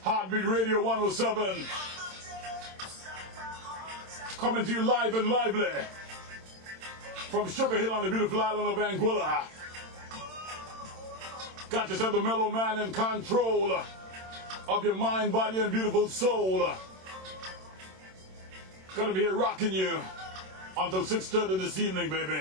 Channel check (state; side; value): late; left; 27 ms